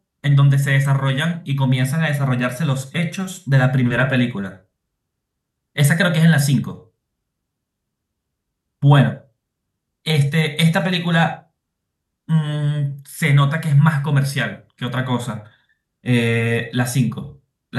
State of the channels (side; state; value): both; identical; correlation 1.00